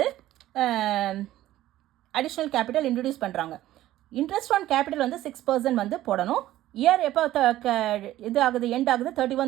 அடிஷ்னல் கேபிட்டல் இன்ட்ரடியூஸ் பண்ணுறாங்க. இன்ட்ரெஸ்ட் ஆன் கேபிட்டல் வந்து 6% வந்து போடணும். இயர் எப்போ இது ஆகுது, எண்ட் ஆகுது?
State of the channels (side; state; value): left; quieter; 14.4 dB